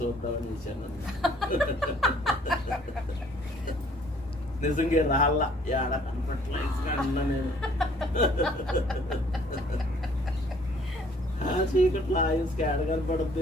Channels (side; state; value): both; normal; correlation 0.59